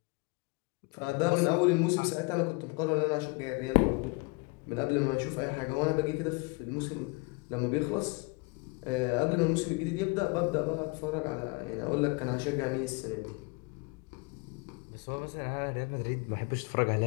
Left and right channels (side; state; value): right; quieter; 27.8 dB